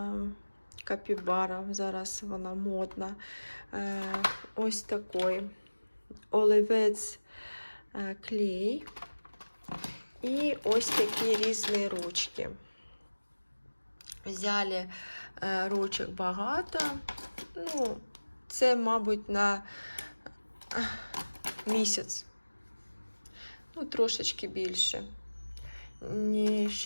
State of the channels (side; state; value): both; inverted; correlation -1.00